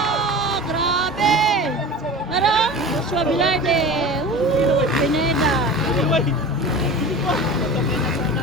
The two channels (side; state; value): both; normal; correlation 0.34